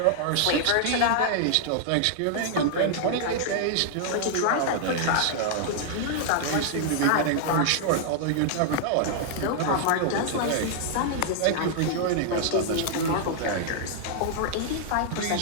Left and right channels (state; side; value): different; both; correlation -0.01